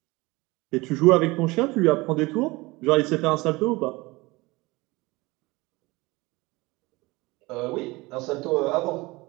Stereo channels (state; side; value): quieter; left; 22.5 dB